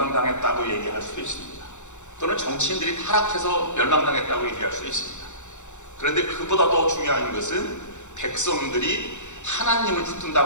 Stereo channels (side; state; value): right; late; 0.84 ms